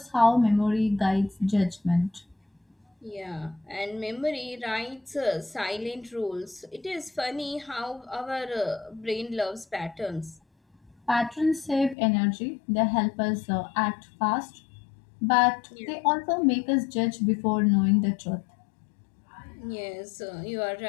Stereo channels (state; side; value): drops out; right; at 12.0 s